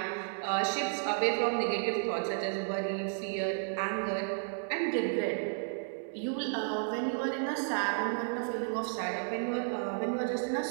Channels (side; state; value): left; silent; 56 dB below the other